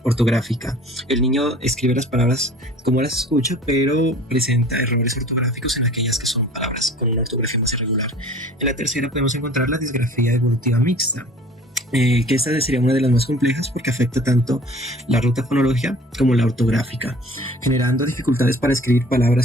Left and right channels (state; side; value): normal; both; correlation 0.47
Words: ortográfica. El niño escribe las palabras como las escucha, pero presenta errores ortográficos en aquellas que son palabras con una ortografía más irregular. En la tercera podemos encontrar la disgrafía evolutiva mixta, que esta sería una de las más complejas porque afecta tanto la ruta fonológica como la ortográfica, generando dificultades para escribir